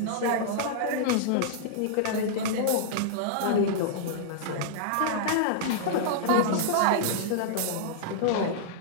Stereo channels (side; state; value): both; different; correlation -0.02